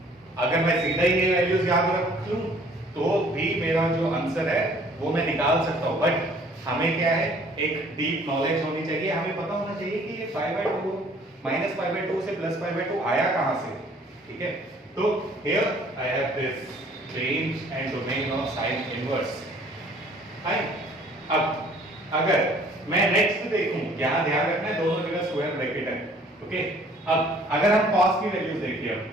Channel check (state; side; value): normal; both; correlation 0.56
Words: अगर मैं सीधा ही ये वैल्यूज याद रख लूं तो भी मेरा जो आंसर है वो मैं निकाल सकता हूं। बट हमें क्या है, एक डीप नॉलेज होनी चाहिए, हमें पता होना चाहिए कि ये π/2 -π/2 से +π/2 आया कहां से। ठीक है, तो here I have this range and domain of sine inverse. अब अगर मैं नेक्स्ट देखूं, यहां ध्यान रखना है दोनों जगह स्क्वायर ब्रैकेट है। ओके, अब अगर हम cos की वैल्यूज देखिए,